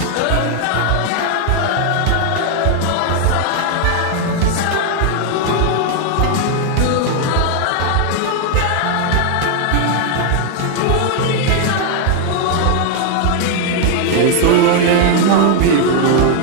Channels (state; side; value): different; both; correlation 0.00